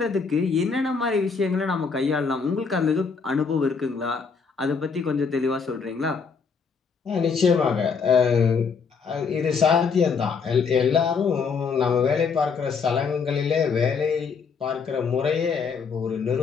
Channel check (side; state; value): right; quieter; 5.5 dB